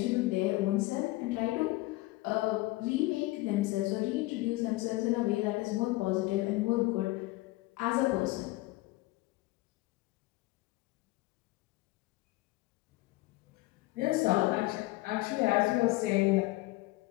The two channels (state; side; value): quieter; right; 20.0 dB